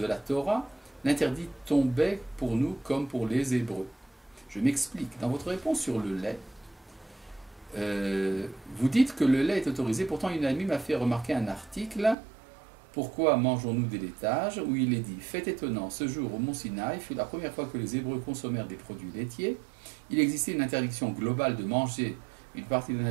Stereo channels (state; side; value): drops out; left; at 12.2 s